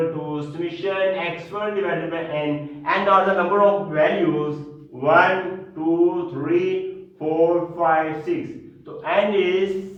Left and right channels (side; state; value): both; identical; correlation 1.00